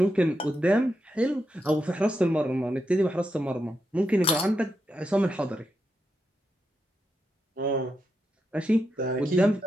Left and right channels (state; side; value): normal; both; correlation 0.85